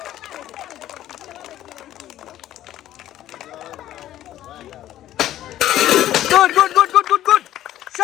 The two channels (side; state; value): right; quieter; 13.0 dB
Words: গুড গুড গুড গুড গুড গুড,